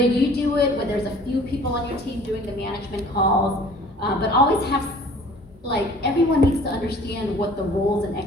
do it, whether there's a few people on your team doing the management calls, but always have, like, everyone needs to understand what the roles and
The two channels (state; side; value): normal; both; correlation 0.50